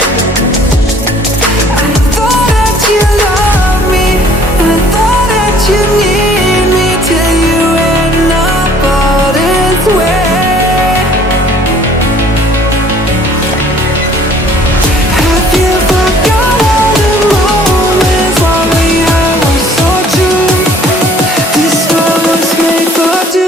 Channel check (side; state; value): both; normal; correlation 0.56